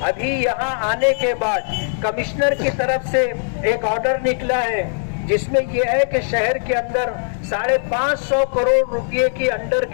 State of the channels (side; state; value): right; silent; 63 dB below the other